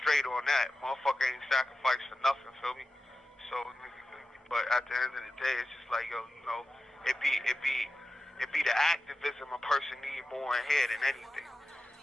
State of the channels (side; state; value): both; normal; correlation 0.92